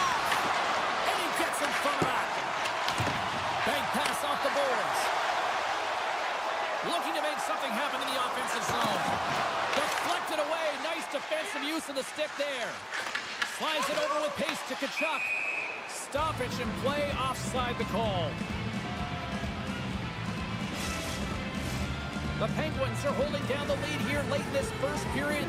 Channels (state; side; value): identical; both; correlation 1.00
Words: And he gets in front of that. Bank pass off the boards. Looking to make something happen in the offensive zone. Deflected away. Nice defensive use of the stick there. Slides it over with pace to Tkachuk. Stoppage and play offside the call. The Penguins are holding down the lead here late in this first